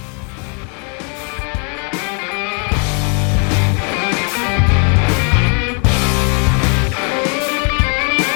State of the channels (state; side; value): quieter; right; 38.0 dB